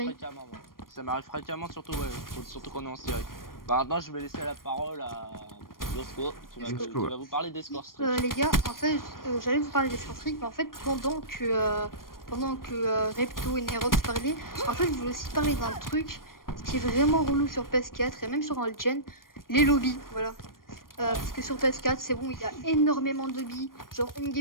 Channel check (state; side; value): late; right; 0.91 ms